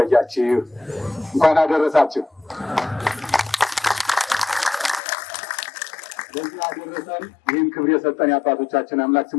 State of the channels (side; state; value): right; drops out; at 5.0 s